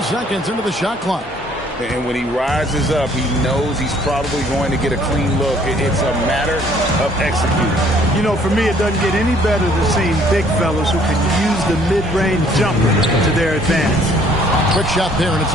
seconds into the shot clock. And when he rises up, he knows he's probably going to get a clean look. It's a matter of executing. You know, for me, it doesn't get any better than seeing big fellas who can use the mid-range jumper to their advantage. Quick shot there, and it's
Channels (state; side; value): normal; both; correlation 0.60